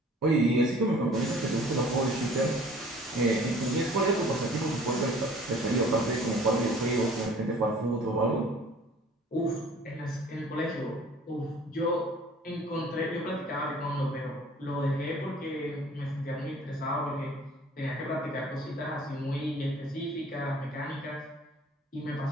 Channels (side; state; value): both; normal; correlation 0.51